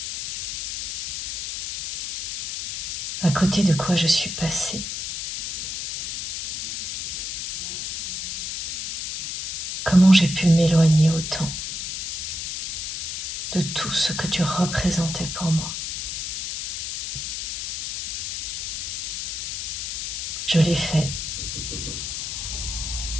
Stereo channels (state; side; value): noise; left; hiss, 4 dB below the sound